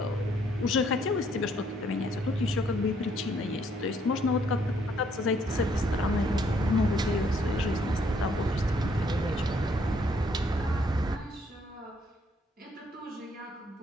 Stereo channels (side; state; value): both; normal; correlation 0.67